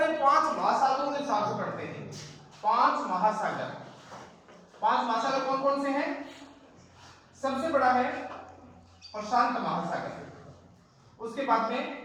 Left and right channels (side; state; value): both; identical; correlation 1.00